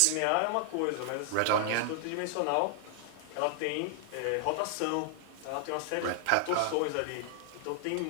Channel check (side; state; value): both; different; correlation -0.01